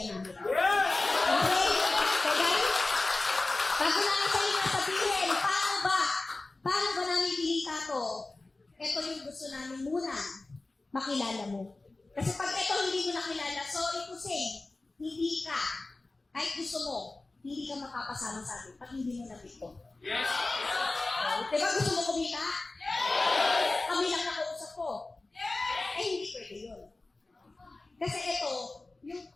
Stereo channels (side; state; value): right; quieter; 3.2 dB